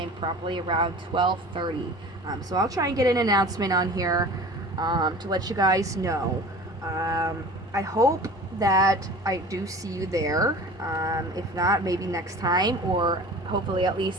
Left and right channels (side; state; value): both; normal; correlation 0.40